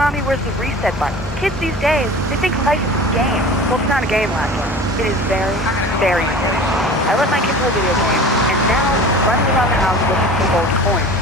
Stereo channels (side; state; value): both; normal; correlation 0.39